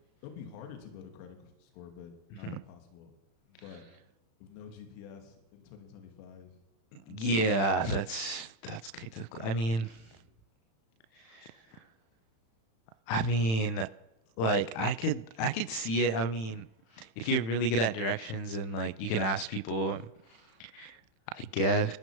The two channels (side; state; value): right; late; 36 ms